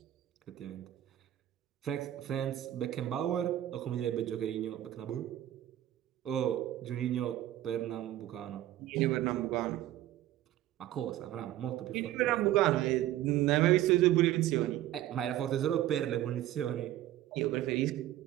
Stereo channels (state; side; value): quieter; left; 13.6 dB